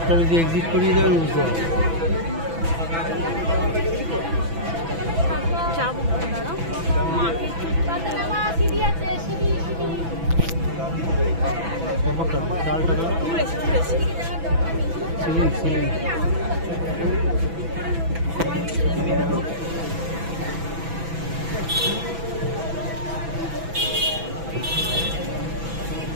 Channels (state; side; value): late; left; 6.0 ms